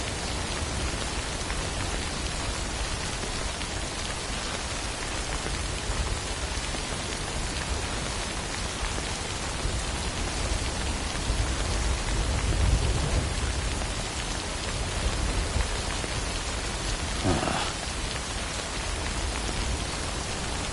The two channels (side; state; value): both; identical; correlation 1.00